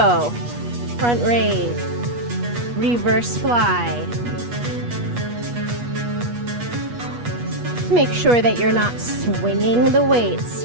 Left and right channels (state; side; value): late; left; 8.3 ms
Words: Front raise, reverse fly. Make sure that you're not swinging the weights.